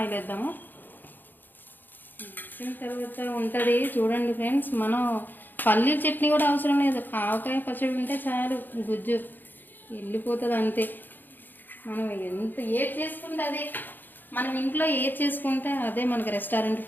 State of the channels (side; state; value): right; late; 0.090 ms